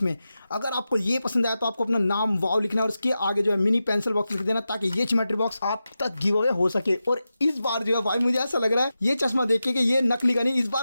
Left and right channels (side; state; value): both; inverted; correlation -0.92